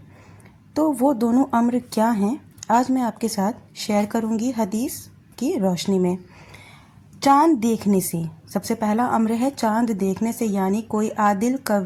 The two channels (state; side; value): identical; both; correlation 1.00